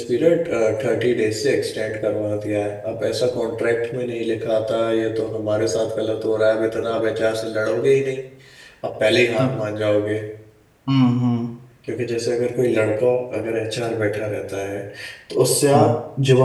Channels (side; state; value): both; identical; correlation 1.00